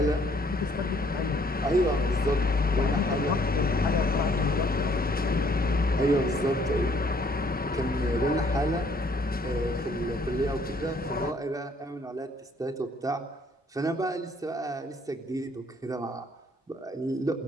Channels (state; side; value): normal; both; correlation 0.63